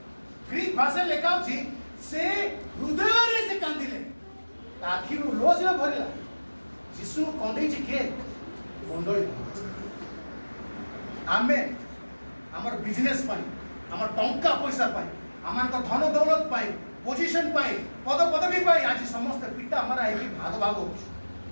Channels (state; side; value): inverted; both; correlation -1.00